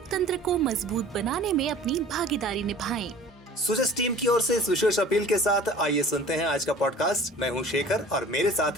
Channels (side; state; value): both; normal; correlation 0.45